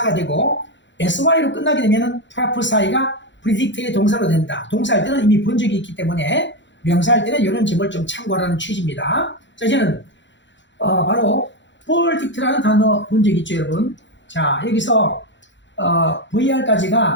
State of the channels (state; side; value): late; right; 0.53 ms